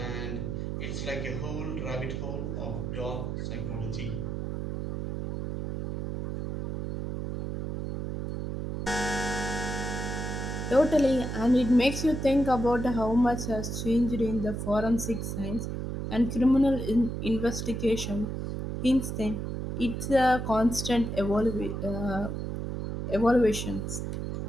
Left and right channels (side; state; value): right; noise; hum, 4 dB below the sound